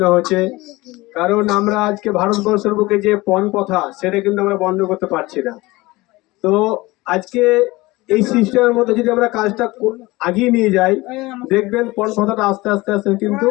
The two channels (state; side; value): quieter; right; 20.9 dB